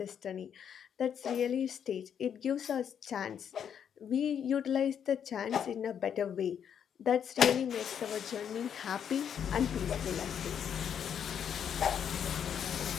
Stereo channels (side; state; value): right; quieter; 8.3 dB